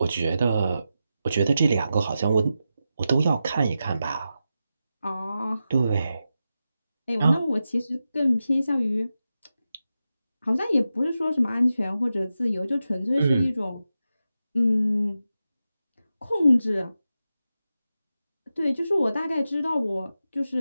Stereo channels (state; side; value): inverted; both; correlation -0.90